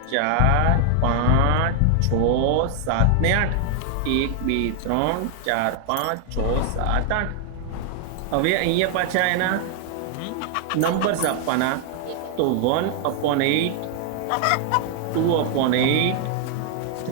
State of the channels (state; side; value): different; both; correlation 0.00